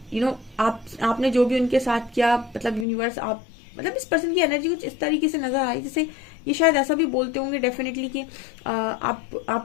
आपने जो भी उनके साथ किया, मतलब यूनिवर्स, आप, मतलब इस पर्सन की एनर्जी कुछ इस तरीके से नजर आई, जैसे ये शायद ऐसा भी बोलते होंगे डेफिनेटली कि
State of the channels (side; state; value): right; drops out; at 2.9 s